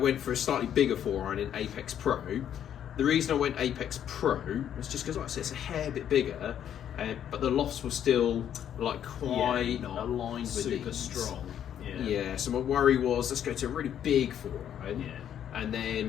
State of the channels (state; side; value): quieter; right; 9.8 dB